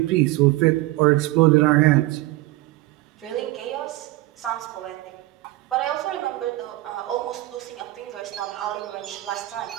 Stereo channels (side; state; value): left; quieter; 18.2 dB